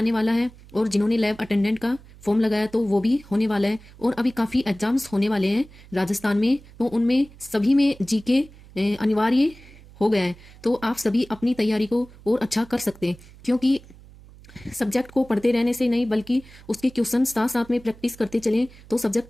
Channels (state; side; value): noise; right; hum, 22 dB below the sound